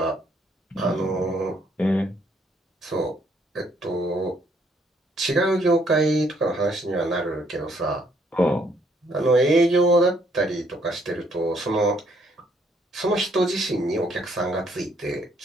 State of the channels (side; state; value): both; normal; correlation 0.68